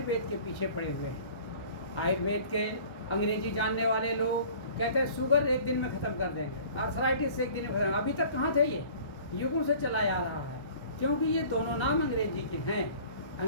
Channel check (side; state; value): right; late; 1.3 ms